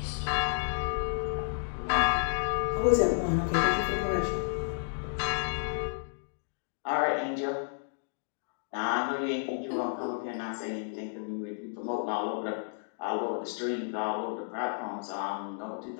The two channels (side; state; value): right; silent; digital silence